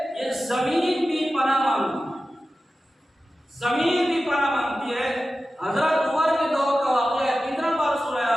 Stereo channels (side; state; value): both; normal; correlation 0.94